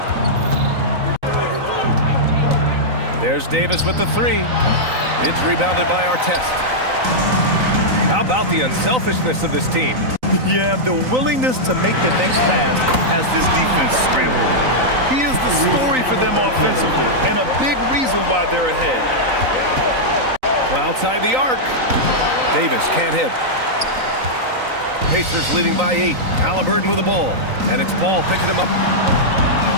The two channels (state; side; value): late; left; 3.9 ms